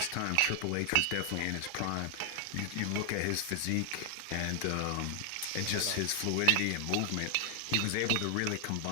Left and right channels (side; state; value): both; different; correlation 0.00